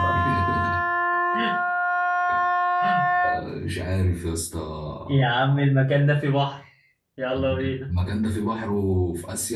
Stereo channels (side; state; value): both; identical; correlation 1.00